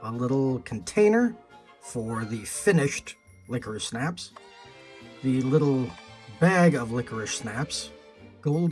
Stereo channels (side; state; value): both; identical; correlation 1.00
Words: a little container for the finished Licorice Snaps, the little bag of Licorice Snaps,